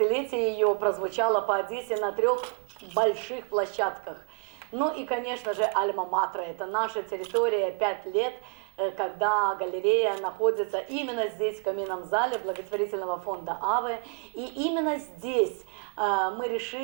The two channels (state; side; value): quieter; left; 36.6 dB